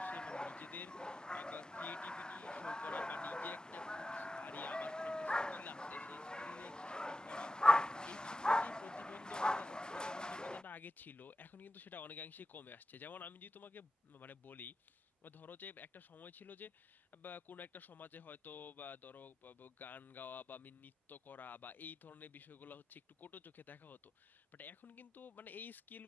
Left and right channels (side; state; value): both; normal; correlation 0.91